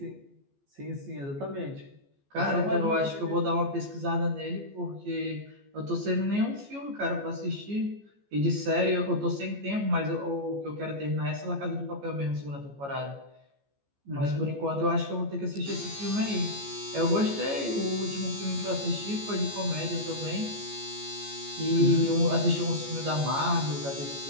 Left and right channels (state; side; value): late; left; 14 ms